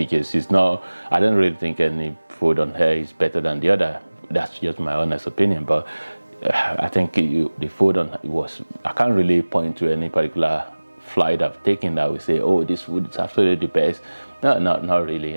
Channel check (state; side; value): inverted; both; correlation -1.00